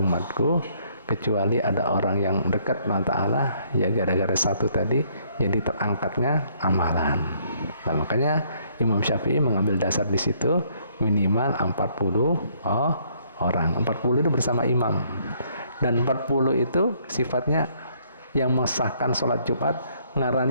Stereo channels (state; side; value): inverted; both; correlation -0.67